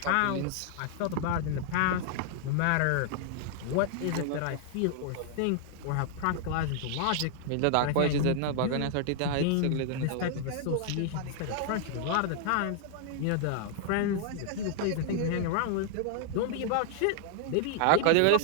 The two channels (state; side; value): different; both; correlation -0.01